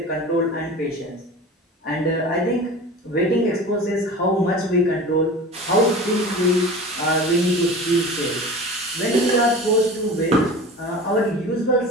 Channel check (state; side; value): normal; both; correlation 0.36